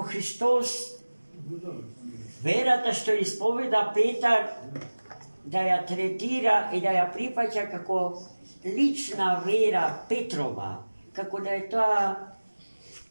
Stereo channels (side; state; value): both; inverted; correlation -1.00